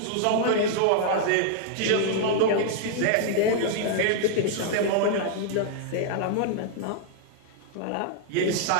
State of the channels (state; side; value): different; both; correlation -0.01